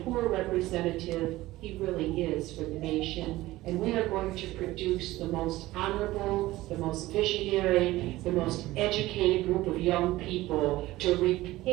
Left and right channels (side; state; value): left; quieter; 17.5 dB